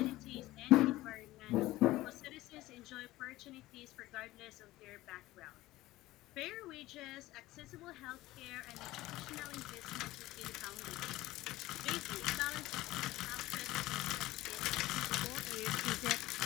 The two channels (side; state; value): right; quieter; 17.3 dB